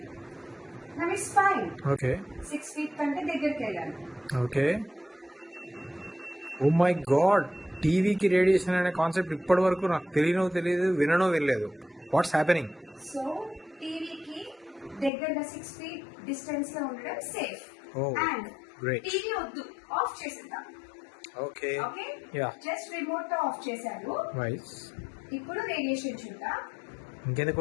now it's fine. Okay. 6 feet కంటే దగ్గరికి వెళ్ళాను. ఓకే. ఓ మై గాడ్, టీవీకి రేడియేషన్ అనే కాన్సెప్ట్ ఇప్పటి వరకు నాకు తెలియదు, వినలేదు. What's happening? సో టీవీకి దగ్గరగా 6 feet డిస్టెన్స్ లో ఉండడం safe. Oh, and great. TV వద్దు, ఆఫ్ చేసేద్దాం. Okay. Okay, yeah. Just remote తో ఆఫ్ చేశాను. వైస్. ఇప్పుడు రేడియేషన్ చూద్దాం. ఇంకెందుకు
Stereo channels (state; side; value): drops out; right; at 15.1 s